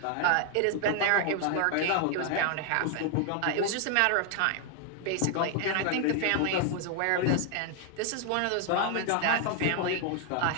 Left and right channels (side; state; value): both; different; correlation 0.00